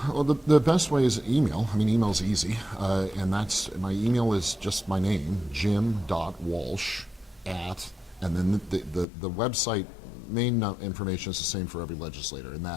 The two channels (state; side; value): drops out; right; at 9.1 s